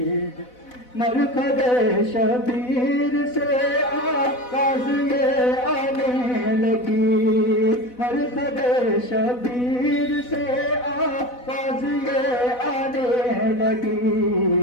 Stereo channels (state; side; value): late; right; 4.0 ms